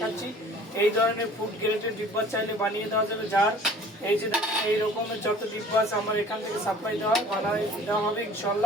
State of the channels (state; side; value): normal; both; correlation 0.48